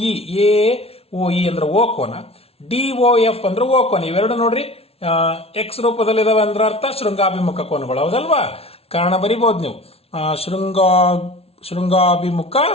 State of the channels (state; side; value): late; right; 0.29 ms